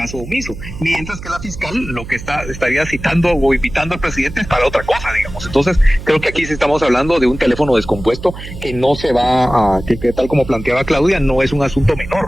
omiso, mientras que la fiscal lo que estaría citando o invitando al presidente es para otra cosa, digamos. Entonces creo que aquí sí estamos hablando de un teléfono descompuesto que no se va a, que tal como planteaba Claudia, no es un asunto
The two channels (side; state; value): right; noise; hum, 12 dB below the sound